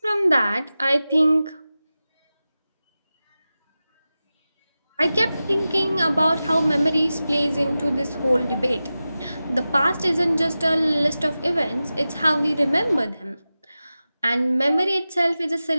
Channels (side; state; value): both; inverted; correlation -0.95